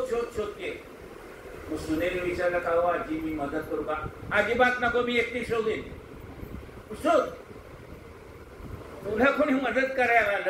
शोध शोधते. मग सुनेने विचारलं का हो आजी मी मदत करू का? अजिबात नको, मी एकटी शोधेन. शोध, तुला कोणी मदत करायला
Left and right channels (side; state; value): both; identical; correlation 1.00